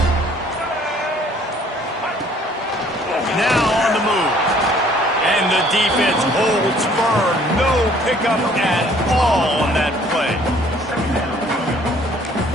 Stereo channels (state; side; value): normal; both; correlation 0.58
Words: Now on the move. And the defense holds firm. No pickup at all on that play.